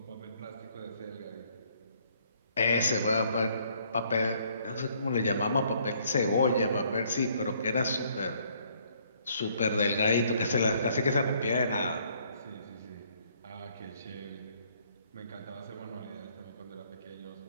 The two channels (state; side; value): inverted; both; correlation -0.65